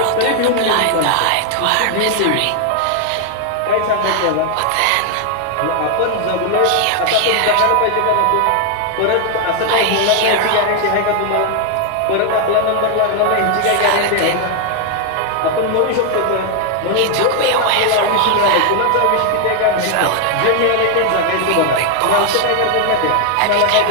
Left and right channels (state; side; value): different; both; correlation 0.00